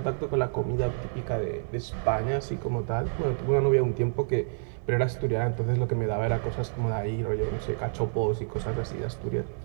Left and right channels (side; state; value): left; silent; 56 dB below the other